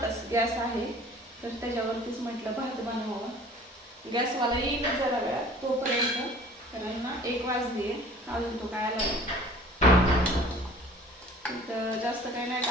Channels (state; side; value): normal; both; correlation 0.48